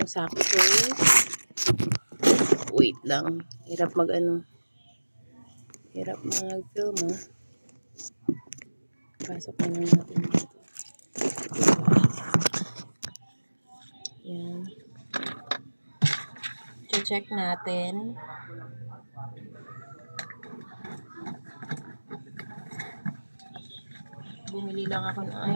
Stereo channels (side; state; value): both; inverted; correlation -1.00